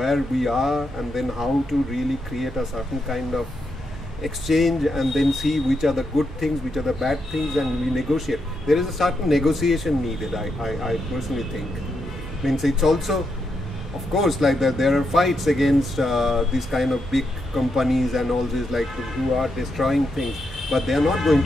we are, and then how to really create a certain kind of exchange, and then see which are the good things, which are the bad things, and we negotiate. There is a certain negotiation needed, I personally think. Means it's also, of course, like there are fights against these kind of big companies and all this, like who are destroying things, but they are not going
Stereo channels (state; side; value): normal; both; correlation 0.83